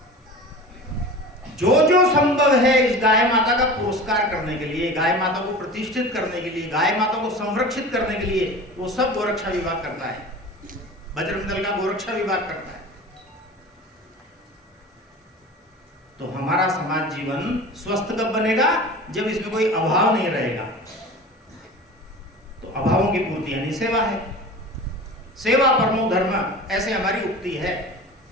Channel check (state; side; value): normal; both; correlation 0.36